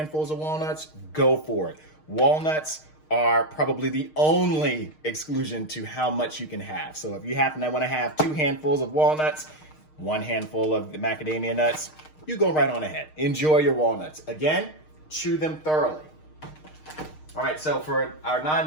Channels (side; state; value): right; late; 6.5 ms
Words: of walnuts, go for it. Walnuts are probably the only exclusion to how much you can have. So if you happen to want to have 2 handfuls of walnuts, 1 handful of the macadamia nuts, you go right on ahead. Enjoy your walnuts. Again, chew them thoroughly. All right, so for our